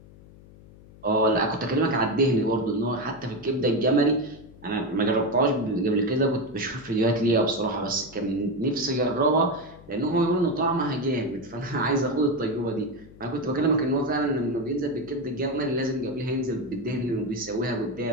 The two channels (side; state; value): left; noise; hum, 22 dB below the sound